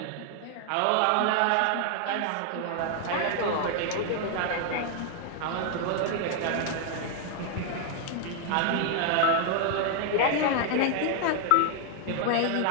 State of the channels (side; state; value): both; different; correlation 0.00